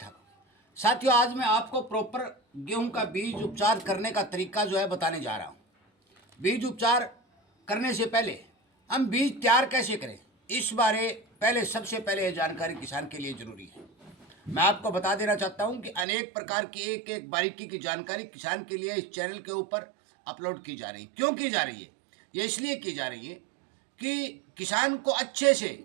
ठाक हो। साथियों आज मैं आपको प्रॉपर गेहूं का बीज उपचार करने का तरीका जो है बताने जा रहा हूं। बीज उपचार करने से पहले हम बीज तैयार कैसे करें इस बारे पहले सबसे पहले ये जानकारी किसान के लिए जरूरी है। मैं आपको बता देना चाहता हूं कि अनेक प्रकार की एक एक बारीकी की जानकारी किसान के लिए इस चैनल के ऊपर अपलोड की जा रही है। क्यों की जा रही है? ये इसलिए की जा रही है कि किसान को अच्छे से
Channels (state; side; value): drops out; left; at 16.1 s